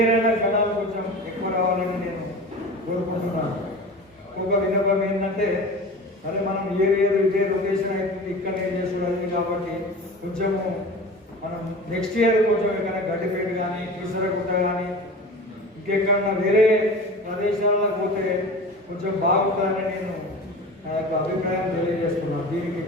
అయినా జనాలు కొంచెం ఎక్కువ రావాలని నేను కోరుకుంటున్నాను. ఇంకొక విన్నపం ఏంటంటే అదే మనం ఇయర్ ఇదే రొటేషన్ అవుతుంది ఇక్కడనే చేసుకోవడానికి కాబట్టి కొంచెము మనం నెక్స్ట్ ఇయర్ కొంచెం ఎక్కడైనా గడ్డిపేట కానీ కీసరగుట్ట కానీ ఇంకెక్కడన్నా వేరే ప్రదేశాల్లో పోతే కొంచెం బాగుంటుందని నేను నా యొక్క అభిప్రాయం తెలియజేస్తున్నాను. దీనికి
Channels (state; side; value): normal; both; correlation 0.35